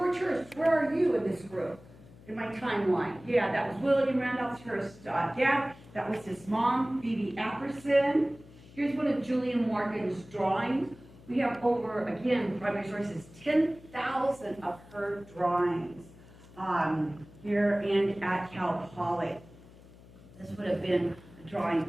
Hearst, where are you in this group? In my timeline. Yeah, that was William Randolph Hearst's dad. That was his mom, Phoebe Apperson. Here's one of Julia Morgan's drawings. We have over, again, primary sources, 10,000 of her drawings here and at Cal Poly. This would have been a drawing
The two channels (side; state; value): left; noise; hum, 21 dB below the sound